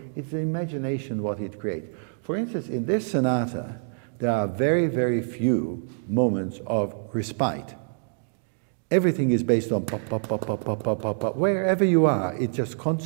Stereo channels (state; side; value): silent; left; digital silence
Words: imagination what it creates. For instance, in this sonata, there are very, very few moments of respite. Everything is based on pop, pop, pop, pop, pop, pop, pop, pop. Wherever you are, it's just